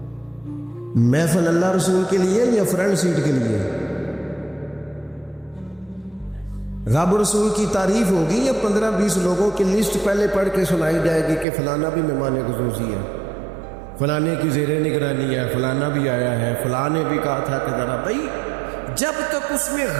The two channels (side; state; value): left; drops out; at 11.5 s